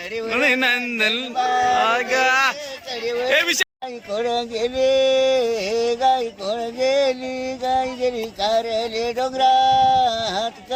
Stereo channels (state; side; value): identical; both; correlation 1.00